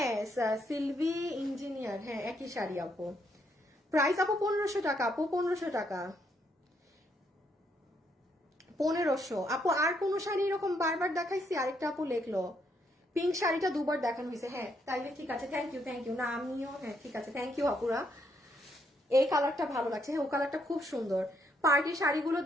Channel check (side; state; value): both; normal; correlation 0.74